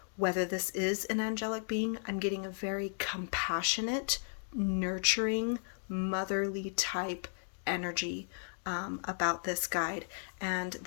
whether this is an angelic being. I'm getting a very compassionate, nurturing, motherly type energy about this guide. And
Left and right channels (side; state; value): right; silent; digital silence